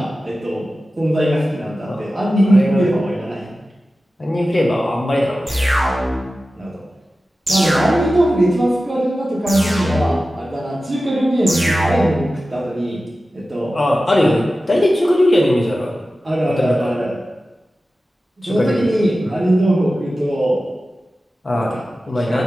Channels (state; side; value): normal; both; correlation 0.94